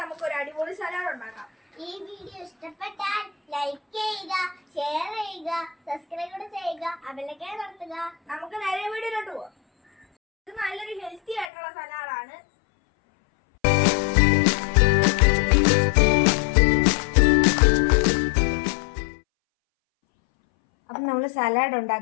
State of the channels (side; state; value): right; drops out; at 11.5 s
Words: നമുക്ക് ഒരു അടിപൊളി സലാഡ് ഉണ്ടാക്കാം. ഈ വീഡിയോ ഇഷ്ടപ്പെട്ടാൽ ലൈക്ക് ചെയ്യുക, ഷെയർ ചെയ്യുക, സബ്സ്ക്രൈബ് ചെയ്യുക, ബെല്ലൈക്കൺ അമർത്തുക. നമുക്ക് നേരെ വീഡിയോയിലോട്ട് പോവാം. ഇത് നല്ലൊരു ഹെൽത്തി ആയിട്ടുള്ള സലാഡാണ്. അപ്പം നമ്മൾ സലാഡ്